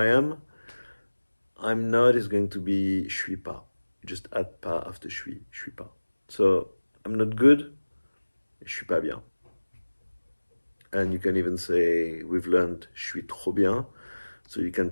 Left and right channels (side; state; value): both; inverted; correlation -1.00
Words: am. I'm not is going to be je suis pas. You just add pas after je suis pas. So, I'm not good, je suis pas bien. And you can even say, we've learned je suis trop bien. So you can